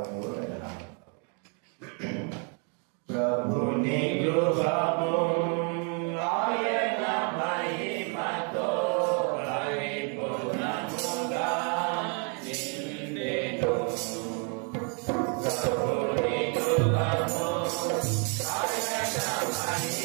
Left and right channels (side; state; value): left; quieter; 38.3 dB